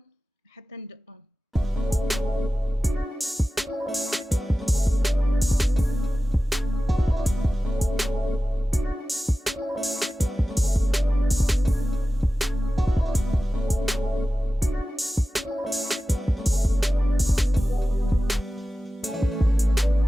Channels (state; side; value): normal; both; correlation 0.95